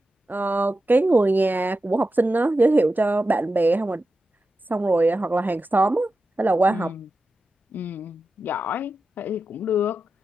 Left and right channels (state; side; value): normal; both; correlation 0.91